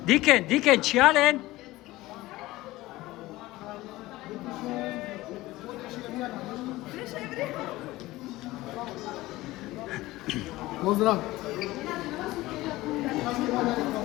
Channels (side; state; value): right; quieter; 18.3 dB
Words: Diken, čijalen. Pozdrav.